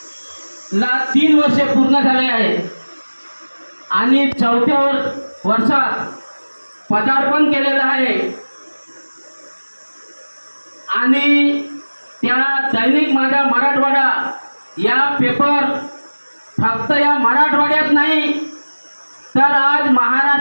3 वर्षे पूर्ण झाले आहेत आणि 4थ्या वर्षात पदार्पण केलेलं आहे आणि त्या दैनिक माझा मराठवाडा या पेपर फक्त या मराठवाड्यात नाही तर आज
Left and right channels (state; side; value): inverted; both; correlation -1.00